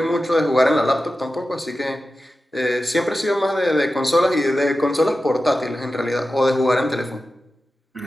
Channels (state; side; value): normal; both; correlation 0.93